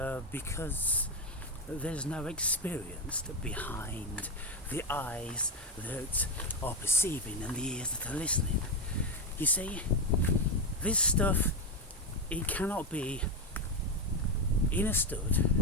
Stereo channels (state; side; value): normal; both; correlation 0.09